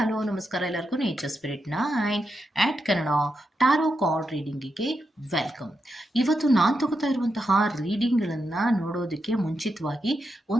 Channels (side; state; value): both; normal; correlation 0.85